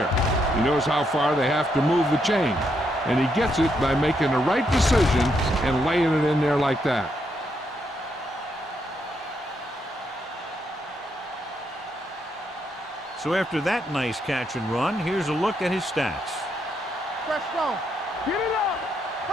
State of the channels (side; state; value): both; normal; correlation 0.78